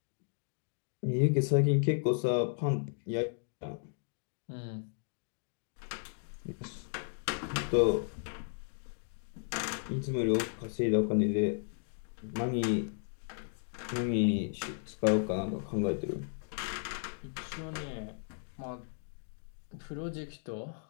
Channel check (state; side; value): silent; right; digital silence